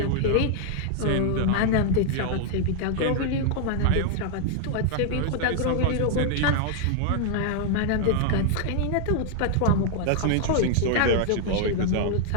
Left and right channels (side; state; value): both; different; correlation -0.01